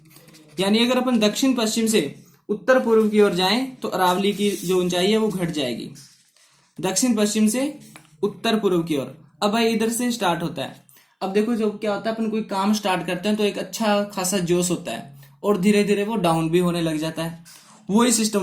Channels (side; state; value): both; identical; correlation 1.00